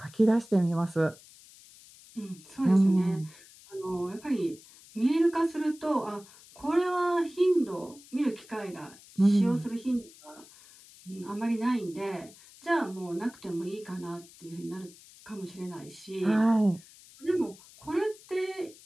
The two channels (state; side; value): noise; left; hiss, 22 dB below the sound